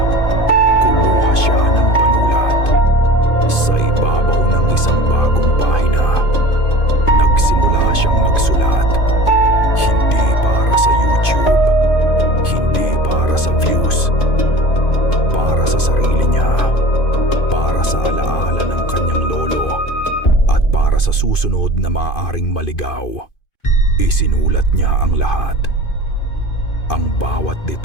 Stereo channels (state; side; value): late; right; 2.5 ms